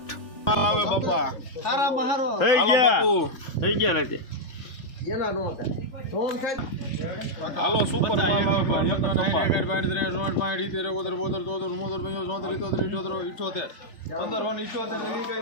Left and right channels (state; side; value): late; right; 3.4 ms